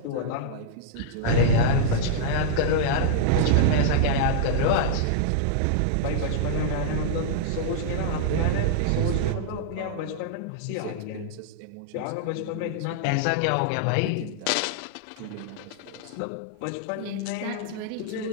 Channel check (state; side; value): different; both; correlation -0.01